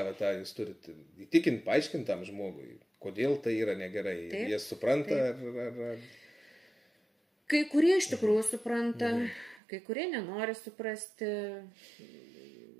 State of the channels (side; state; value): left; drops out; at 9.6 s